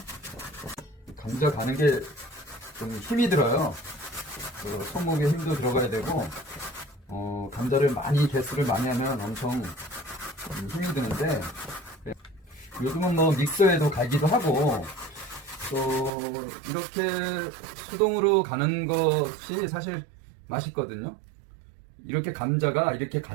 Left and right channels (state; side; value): drops out; left; at 16.1 s